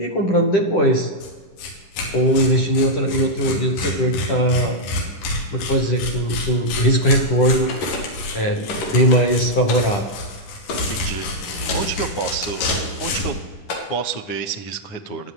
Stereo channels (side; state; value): right; late; 10 ms